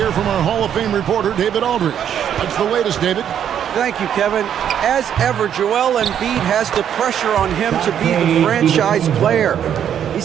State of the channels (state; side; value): quieter; left; 9.3 dB